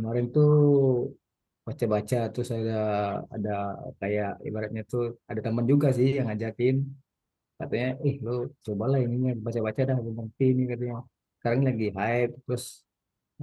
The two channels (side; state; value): both; identical; correlation 1.00